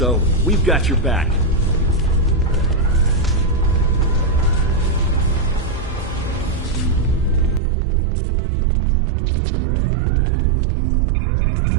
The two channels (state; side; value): drops out; left; at 7.6 s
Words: We've got your back.